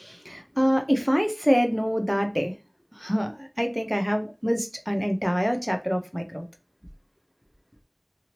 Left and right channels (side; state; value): both; identical; correlation 1.00